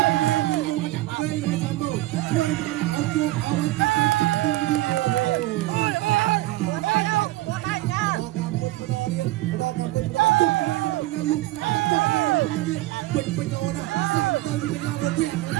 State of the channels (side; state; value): left; quieter; 17.4 dB